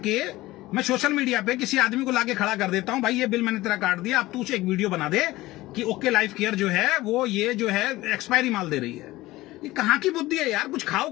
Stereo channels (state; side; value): quieter; right; 18.2 dB